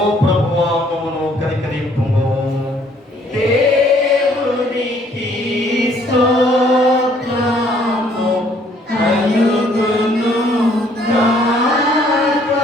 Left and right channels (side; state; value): both; normal; correlation 0.63